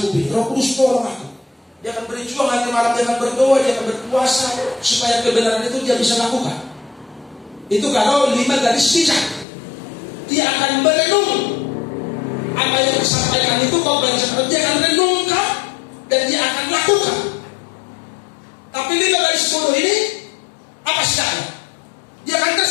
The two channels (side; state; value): right; drops out; at 9.5 s